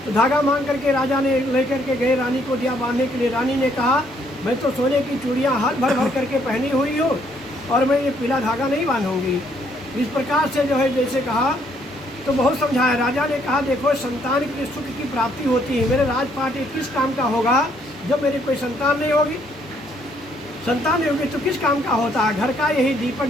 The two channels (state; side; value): normal; both; correlation 0.68